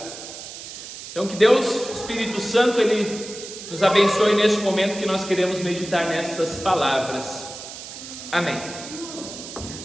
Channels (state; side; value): noise; right; hiss, 12 dB below the sound